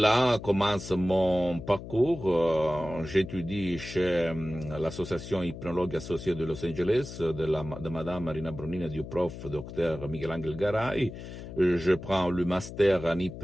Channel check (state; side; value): noise; left; hum, 11 dB below the sound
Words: commence mon parcours. J'étudie chez l'association hypnologue associée de Los Angeles, de Madame Marina Brunini et du prof Dr Miguel Angel Garay. Je prends le master en